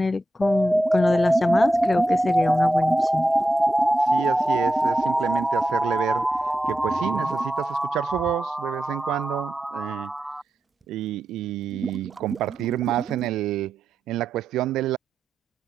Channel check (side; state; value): both; normal; correlation 0.89